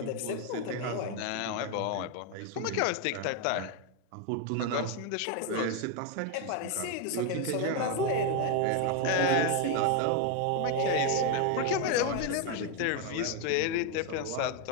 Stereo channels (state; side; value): different; both; correlation 0.01